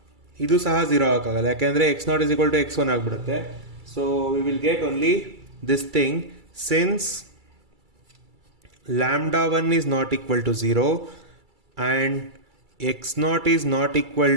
ಇದು ಸಹ 0 ಆಗೋಕ್ಕಾಗಲ್ಲ, ಯಾಕೆಂದರೆ x0 is equal to x1 ಆಗಿಬಿಡುತ್ತೆ. So we will get only this thing, since lambda 1 is not equal to 0 and x0 is not equal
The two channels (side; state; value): left; late; 2.3 ms